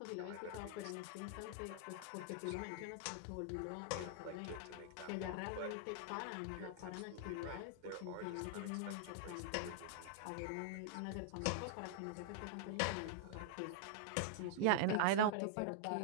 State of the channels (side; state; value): both; different; correlation -0.01